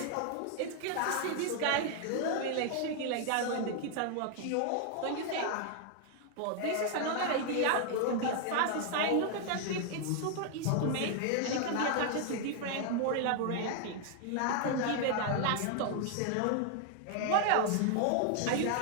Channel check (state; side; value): different; both; correlation 0.00